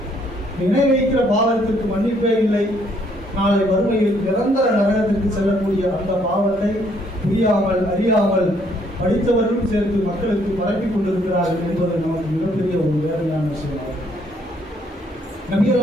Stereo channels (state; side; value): normal; both; correlation 0.67